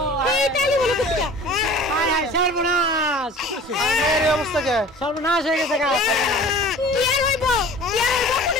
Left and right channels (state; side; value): normal; both; correlation 0.44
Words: সর্বনাশ, অবস্থা কে? সর্বনাশ হয়ে গেছে। কি আর হইব? কি আর হইব?